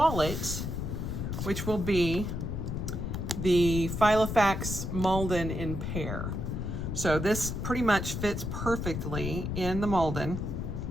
which will be the Filofax Malden in Pear. So this pretty much fits perfectly in the Malden.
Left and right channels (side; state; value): left; noise; rumble, 3 dB below the sound